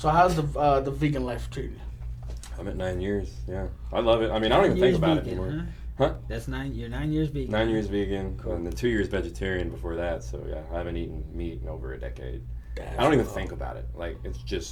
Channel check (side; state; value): both; identical; correlation 1.00